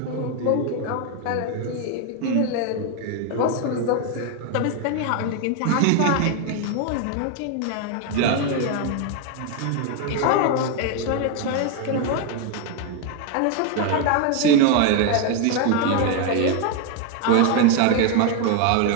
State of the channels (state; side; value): different; both; correlation 0.01